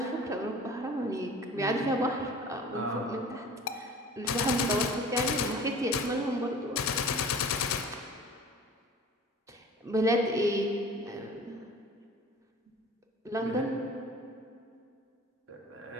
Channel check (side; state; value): both; normal; correlation 0.43